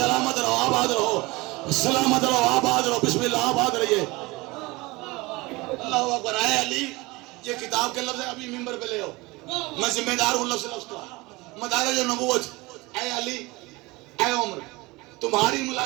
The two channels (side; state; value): left; quieter; 22.5 dB